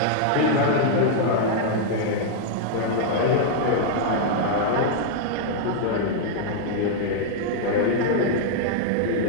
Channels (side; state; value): both; different; correlation -0.01